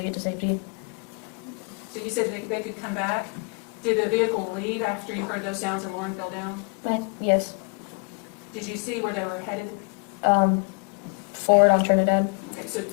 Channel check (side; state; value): right; quieter; 36.0 dB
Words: get to safety. So you said they could come back. Did the vehicle leave after you heard those sounds and Lauren fell down? Yes. Did you see where they were headed? Forward on Trinidad. Okay, so